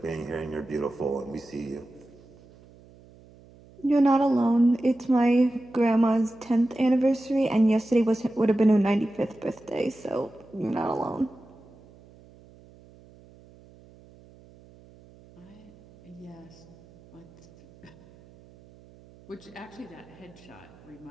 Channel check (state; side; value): noise; right; hum, 24 dB below the sound